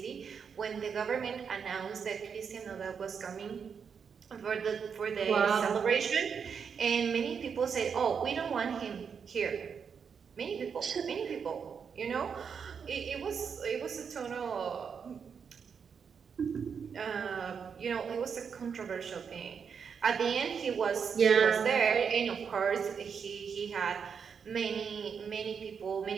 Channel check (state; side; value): quieter; left; 6.5 dB